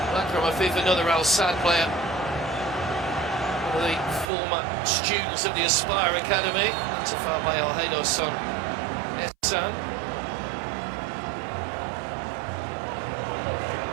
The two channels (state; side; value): drops out; left; at 4.2 s